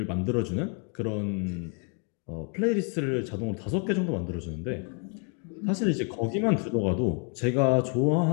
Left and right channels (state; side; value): quieter; right; 37.6 dB